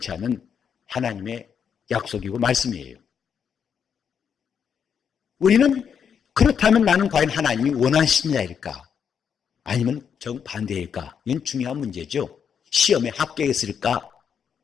않는 하나님의 약속이고 말씀이에요. 우리는 그렇다면 나는 과연 하나님이 원하시는 자일까? 아니면 정반대일까? 이건 중요한 문제죠. 시험에 합격했을까?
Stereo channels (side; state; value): right; quieter; 7.4 dB